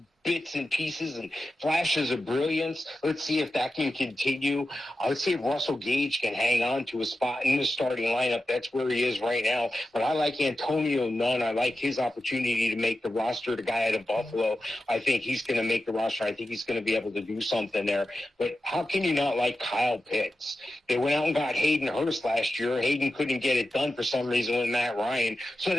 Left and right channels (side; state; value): both; normal; correlation 0.92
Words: bits and pieces and flashes of brilliance. Let's see if that can continue. I would say if Russell Gage can hang on to a spot in the starting lineup. That's where he is right now. But I like Antonio Nunn. I like his opportunity to make the roster. The guy out of Buffalo, I think he's going to make the roster. I think he's going to be able to do something there. But how can you not like Kyle Pitts? They went out and got Hayden Hurst last year. Hayden couldn't get it done for some reason with Matt Ryan. So